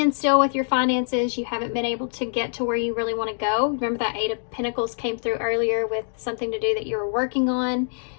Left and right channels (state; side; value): silent; right; digital silence